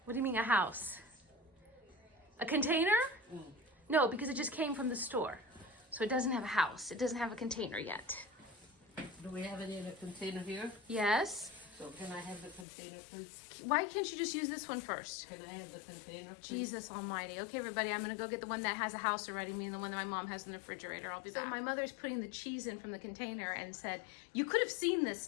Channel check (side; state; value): right; drops out; at 12.7 s